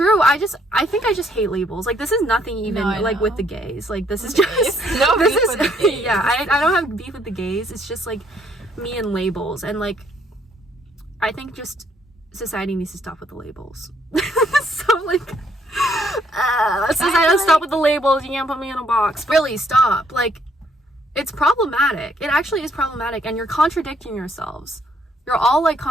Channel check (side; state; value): both; normal; correlation 0.68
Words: I think I just hate labels. Like, this is nothing even like with the gays. Like, this is just yeah, I don't have beef with the gays. It's just like me and labels. And like, I think just society needs to stop with the labels. So like, society, stop with the labels. You can't put me in a box. Really, stop. Like, it's problematic. It actually is problematic, and you're contradicting yourselves. You're all like